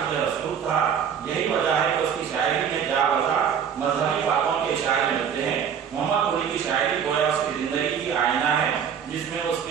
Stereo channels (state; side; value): quieter; left; 7.8 dB